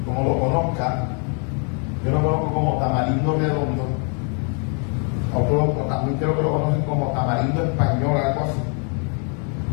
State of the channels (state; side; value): quieter; right; 39.8 dB